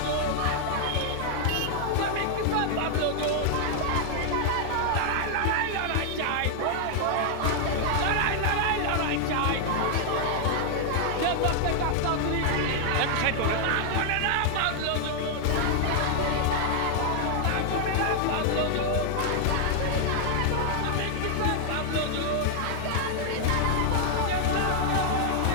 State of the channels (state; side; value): different; both; correlation 0.00